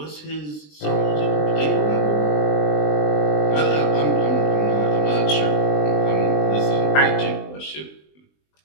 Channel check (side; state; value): right; late; 20 ms